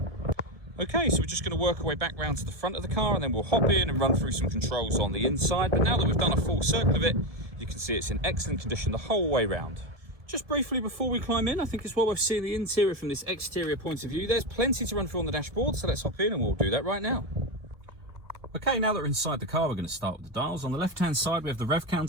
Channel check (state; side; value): late; left; 1.7 ms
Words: Okay, so we're just going to work our way back round to the front of the car, and then we'll hop in and run through some controls on the inside. But now that we've done a full circle of it, you can see it's in excellent condition the whole way round. Just briefly before we climb in, I think it's well worth seeing the interior from this exterior point of view. There's plenty to run through on the dashboard, so let's hop in and we'll do that right now. Okay, now that we're inside the car, we're going to start with the dials. On the left-hand side, we have the rev